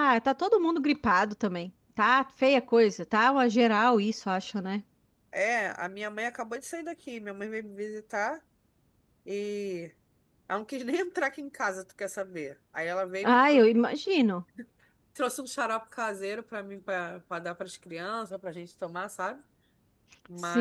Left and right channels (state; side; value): identical; both; correlation 1.00